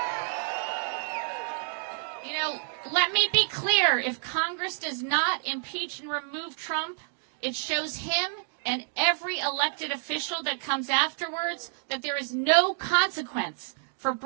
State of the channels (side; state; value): left; silent; digital silence